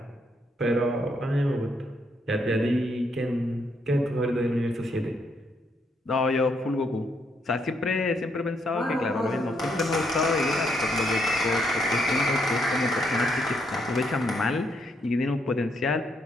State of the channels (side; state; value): both; normal; correlation 0.74